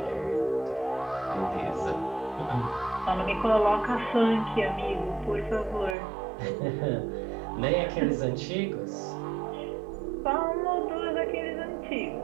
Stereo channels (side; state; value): left; drops out; at 6.0 s